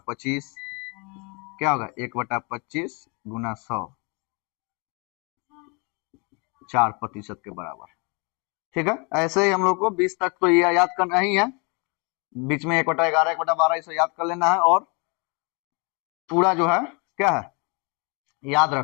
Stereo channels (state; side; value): quieter; right; 31.2 dB